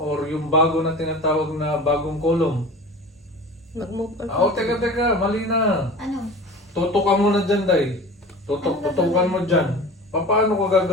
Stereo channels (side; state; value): both; normal; correlation 0.37